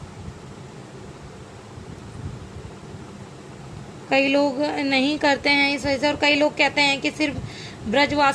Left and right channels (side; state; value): both; identical; correlation 1.00